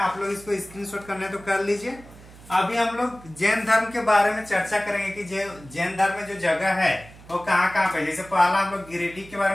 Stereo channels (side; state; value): right; noise; hum, 21 dB below the sound